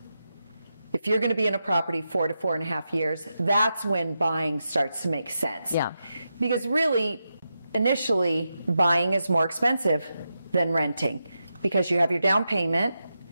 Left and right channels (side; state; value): both; inverted; correlation -0.88